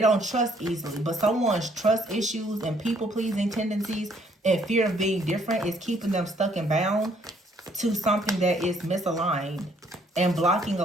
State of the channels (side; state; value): both; normal; correlation 0.65